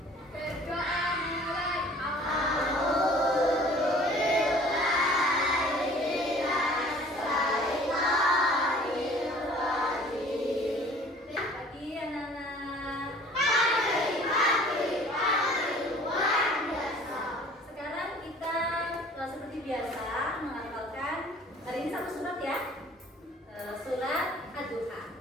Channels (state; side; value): normal; both; correlation 0.50